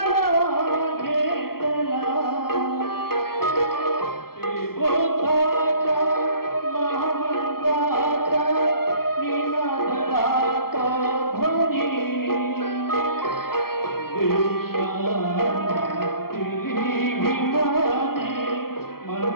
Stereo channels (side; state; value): right; late; 0.94 ms